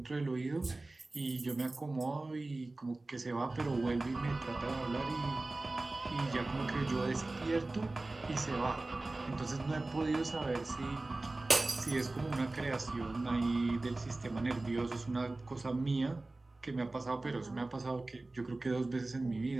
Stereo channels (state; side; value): quieter; left; 3.0 dB